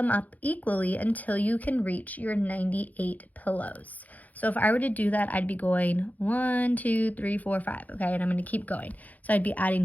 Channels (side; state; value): right; late; 0.078 ms